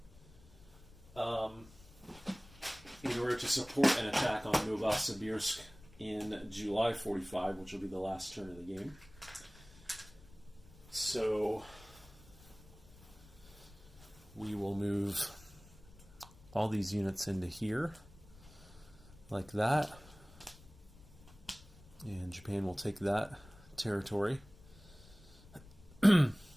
In order to support an attack on Novosibirsk in July 45, which will be the last turn of the game. So we will move all these units into here, like that. And Japan will take that territory.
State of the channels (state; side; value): noise; left; rumble, 22 dB below the sound